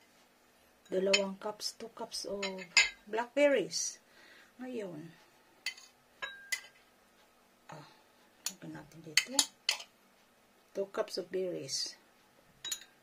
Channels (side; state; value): both; identical; correlation 1.00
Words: 2 cups, 2 cups of blackberries. Ngayon, lagyan natin dito 2 cups of berries,